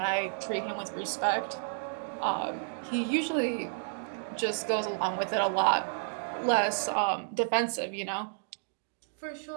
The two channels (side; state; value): left; silent; digital silence